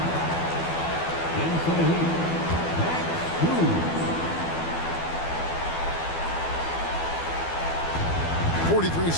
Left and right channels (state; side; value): late; right; 12 ms